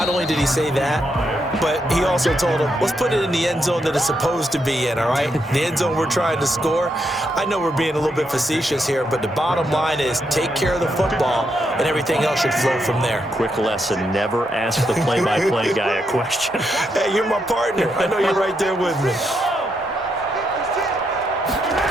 only did he say that, but he also told him, let's put it in the end zone that it's supposed to be in, all right? The end zone we're trying to score. I know we're being a little bit facetious here, but the bottom line is take care of the football, and everything else should flow from there. Quick lesson, never ask the play-by-play guy a question. Hey, you're my partner. I know you're right there with me.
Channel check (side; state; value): both; normal; correlation 0.80